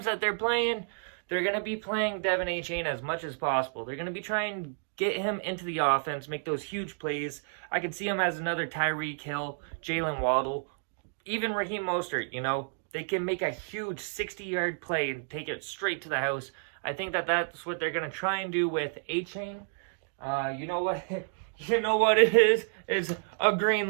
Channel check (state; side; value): silent; left; digital silence